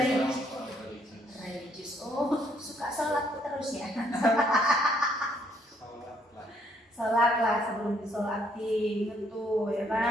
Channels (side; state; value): both; normal; correlation 0.69